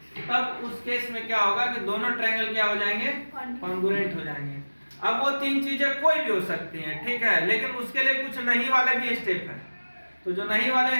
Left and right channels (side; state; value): both; inverted; correlation -1.00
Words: तब उस केस में क्या होगा कि दोनों ट्रायंगल क्या हो जाएंगे, कॉन्ग्रुएंट हो जाएंगे। अब वो 3 चीजें कोई भी हो सकती हैं, ठीक है, लेकिन उसके लिए कुछ नहीं वाले भी स्टेप है। तो जो नहीं